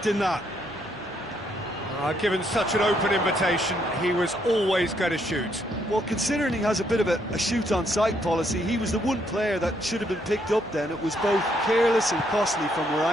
that. Given such an open invitation, he was always going to shoot. Well, considering he has a bit of a shoot-on-sight policy, he was the one player that should have been picked up then. It was both careless and costly from where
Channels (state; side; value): noise; left; hum, 23 dB below the sound